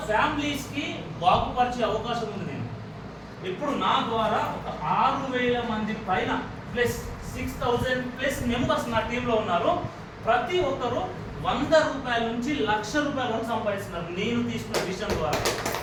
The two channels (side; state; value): both; identical; correlation 1.00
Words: ఫ్యామిలీస్కి బాగుపరిచే అవకాశం ఉంది. నేను ఇప్పుడు నా ద్వారా ఒక 6,000 మంది పైన ప్లస్ 6,000+ మెంబర్స్ నా టీంలో ఉన్నారు. ప్రతి ఒక్కరు ₹100 నుంచి ₹1,00,000 వరకు సంపాదిస్తున్నారు నేను తీసుకున్న విషయం ద్వారా.